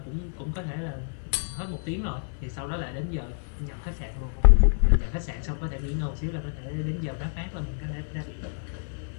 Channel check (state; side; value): silent; right; 59 dB below the other